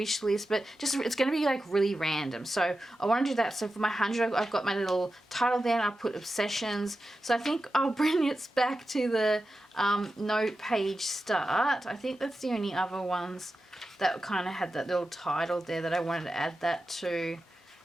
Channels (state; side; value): normal; both; correlation 0.92